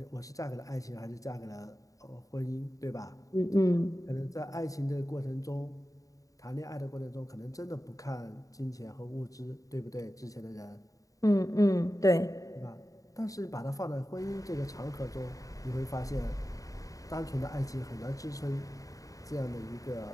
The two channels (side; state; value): right; late; 0.16 ms